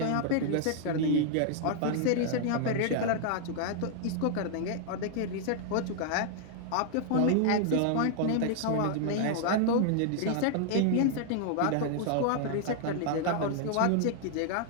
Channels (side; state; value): both; different; correlation 0.00